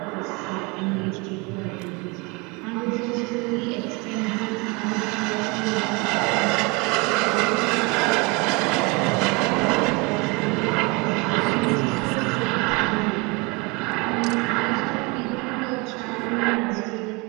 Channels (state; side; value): quieter; left; 28.0 dB